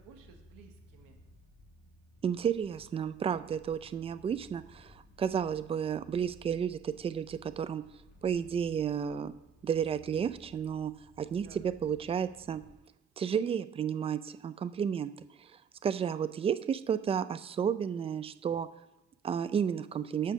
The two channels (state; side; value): quieter; left; 7.5 dB